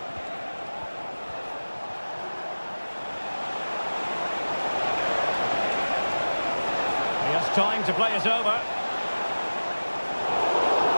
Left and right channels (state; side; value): inverted; both; correlation -1.00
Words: He has time to play it over.